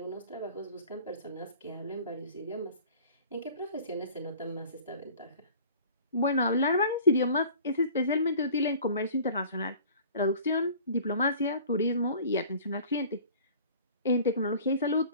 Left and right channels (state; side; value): inverted; both; correlation -0.46